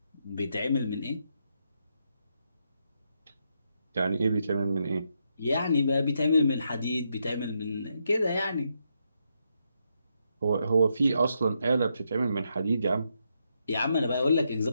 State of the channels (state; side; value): inverted; both; correlation -0.80